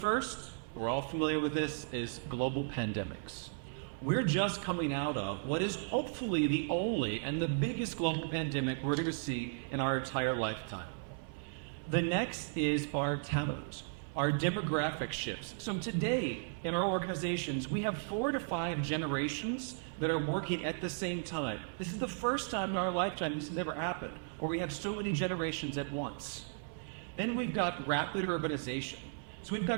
we're all familiar with this, is global pandemics. We're just coming out of what is hopefully the only and the biggest global pandemic we're going to see in our entire lifetime. The next is our talent, our demographic shifts. So today, in our organizations, we have 4 to 5 generations that are working at the same time. This is the first time in our lifetime this has ever happened, where we have so many generations at once. Then we've got rapid urbanization. So we've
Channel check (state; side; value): silent; left; 54 dB below the other